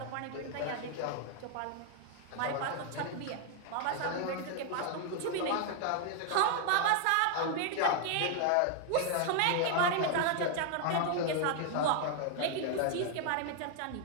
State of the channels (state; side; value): different; both; correlation 0.00